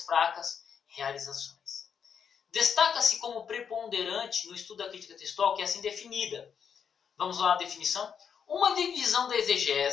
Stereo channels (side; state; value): right; quieter; 7.3 dB